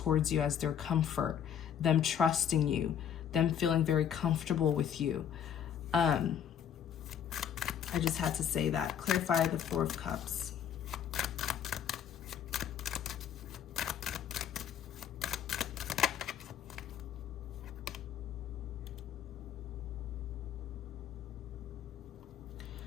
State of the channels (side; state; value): right; quieter; 8.9 dB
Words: you as their comfort, them trusting you, them feeling very comfortable with you. I just had to say that. Clarify the Four of Cups.